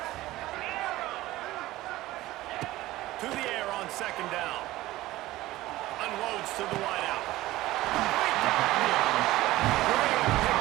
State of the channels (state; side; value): quieter; left; 17.0 dB